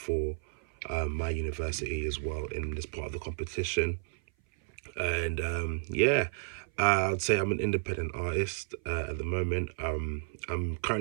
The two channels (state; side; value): silent; left; 56 dB below the other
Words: my university as well in this part of the competition. And I'd say I'm an independent artist at the moment. I'm